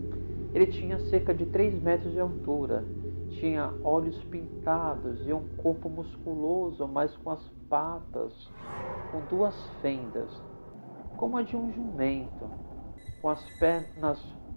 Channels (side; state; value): both; inverted; correlation -1.00